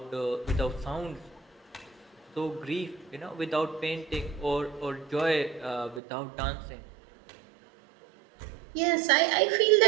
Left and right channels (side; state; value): left; drops out; at 6.0 s